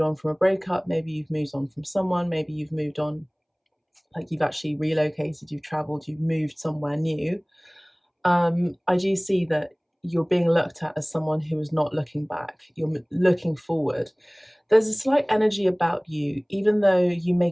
on from a breakup. Maybe you've moved on from someone. Maybe you've moved on, like you've actually relocated. You've traveled. You've moved somewhere new. I do see that you're being looked at as someone who is not looking back. You're looking forward. There's a slight energy about you, even though you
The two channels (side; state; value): both; identical; correlation 1.00